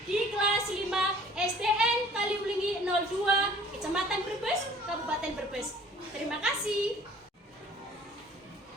di kelas 5 SDN Kaliulingi 02, Kecamatan Brebes, Kabupaten Brebes. Terima kasih.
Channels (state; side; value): normal; both; correlation 0.52